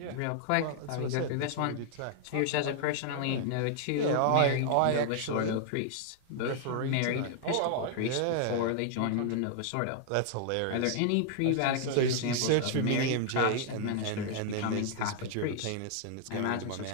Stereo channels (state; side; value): different; both; correlation 0.00